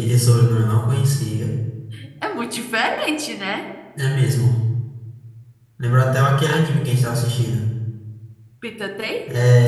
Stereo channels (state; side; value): identical; both; correlation 1.00